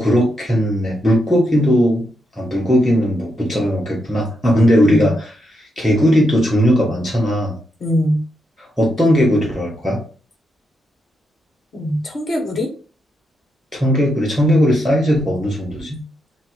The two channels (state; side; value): normal; both; correlation 0.82